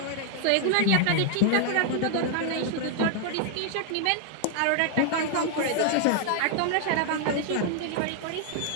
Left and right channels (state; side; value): different; both; correlation 0.00